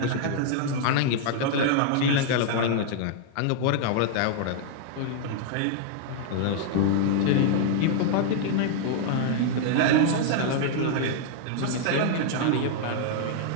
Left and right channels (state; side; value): different; both; correlation -0.01